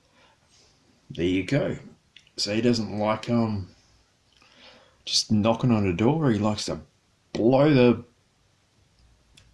There you go. So he doesn't like just knocking on a door. He likes to blow the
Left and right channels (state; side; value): identical; both; correlation 1.00